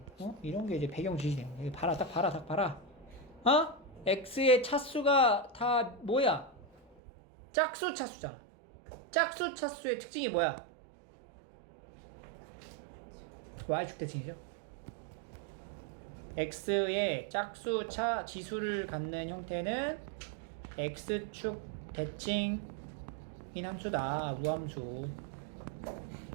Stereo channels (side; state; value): left; drops out; at 7.0 s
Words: 이런 게 이제 배경 지시 되는 거야. 봐라 딱 봐라. x의 차수가 다 뭐야? 짝수 차수잖아. 짝수 차수의 특징이 뭐야? y축 대칭이죠. x의 짝수 차 지수를 갖는 형태는 x축 대칭인 함수다. 우함수.